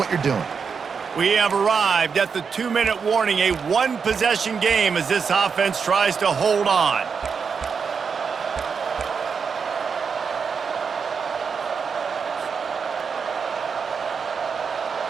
you're doing. We have arrived at the 2-minute warning, a one-possession game as this offense tries to hold on.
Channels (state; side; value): quieter; left; 5.9 dB